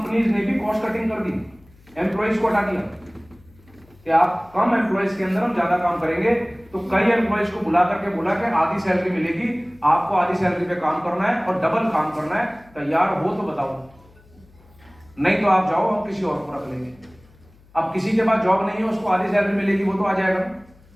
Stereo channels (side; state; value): left; noise; hum, 28 dB below the sound